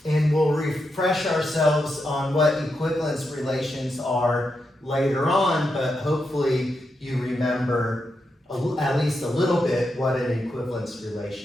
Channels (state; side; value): normal; both; correlation 0.85